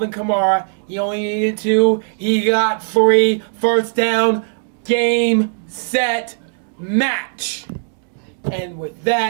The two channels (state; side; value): silent; left; digital silence